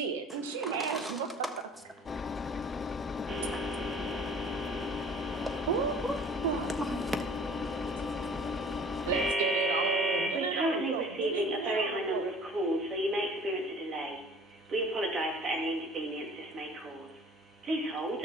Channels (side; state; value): both; normal; correlation 0.49